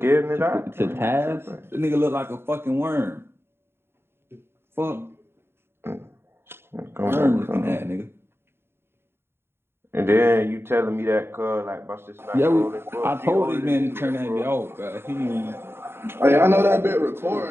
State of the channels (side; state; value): left; late; 0.11 ms